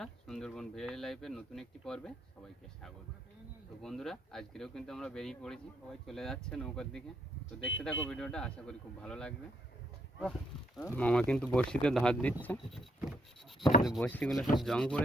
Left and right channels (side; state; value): both; normal; correlation 0.74